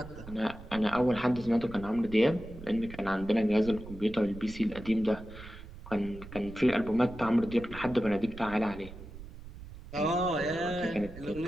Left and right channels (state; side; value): noise; right; rumble, 15 dB below the sound